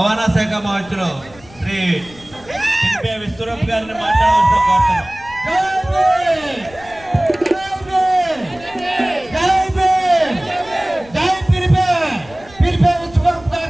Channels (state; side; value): noise; left; rumble, 22 dB below the sound